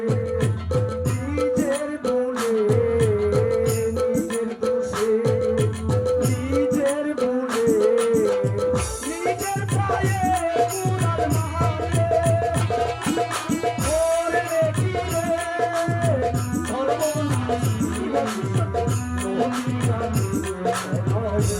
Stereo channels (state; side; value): identical; both; correlation 1.00